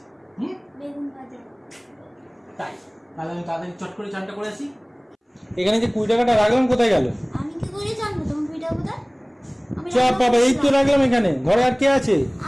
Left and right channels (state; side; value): identical; both; correlation 1.00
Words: বেগুন ভাজা। তাই তাহলে আমি তাড়াতাড়ি চট করে চানটা করে আসি। এখানে যে 20 টাকাটা রাখলাম কোথায় গেল? আমি কি করে জানবো তোমার 20 টাকা কোথায়? চাপ বাবা, এই তো রাখলাম এখানে। ঘরে আর কে আছে?